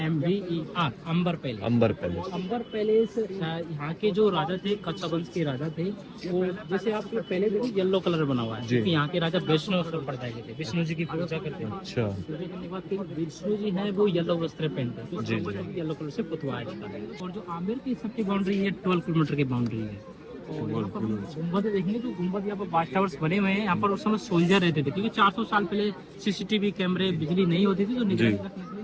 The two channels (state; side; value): identical; both; correlation 1.00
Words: अंबर पैलेस। अंबर पैलेस। अंबर पैलेस यहाँ के जो राजा थे, कच्छा वंश के राजा थे, वो जैसे आप पहले देखिए येलो कलर बना हुआ है, क्योंकि यहाँ के राजा वैष्णव संप्रदाय के थे, विष्णु जी की पूजा करते हैं। अच्छा। पूजा करने के बाद विष्णु जी है वो येलो वस्त्र पहनते हैं, तो येलो कलर से पुतवाया जाता है। और जो आमिर की सबकी बाउंड्री है 12 किलोमीटर की बाउंड्री है। और यहाँ पर गुम्बद देखेंगे तो गुम्बद यहाँ पर वाच टावर्स बने हुए हैं। यहाँ पर उस समय सोल्जर रहते थे, क्योंकि 400 साल पहले CCTV कैमरे, बिजली नहीं होती थी, तो निगरानी रखने के लिए